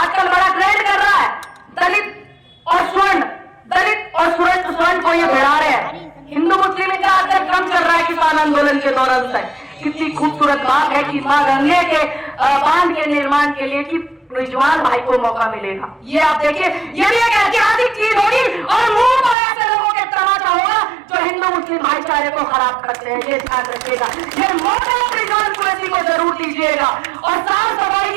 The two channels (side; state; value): left; drops out; at 19.4 s